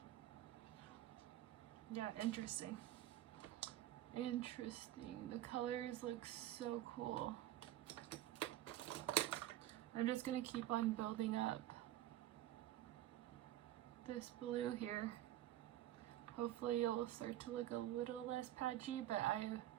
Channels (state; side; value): quieter; left; 13.7 dB